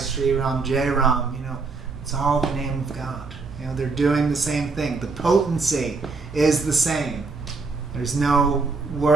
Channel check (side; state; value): left; quieter; 4.1 dB